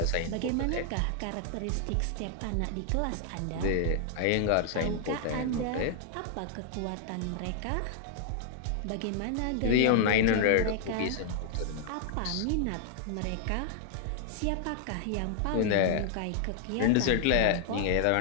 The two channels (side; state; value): both; different; correlation 0.00